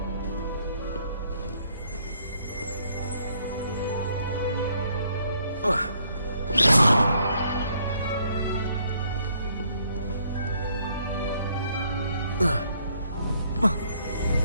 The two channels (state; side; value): inverted; both; correlation -0.68